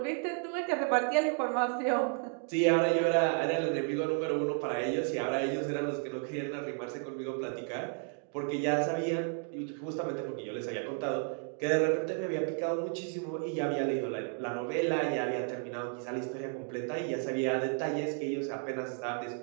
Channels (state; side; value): quieter; left; 39.5 dB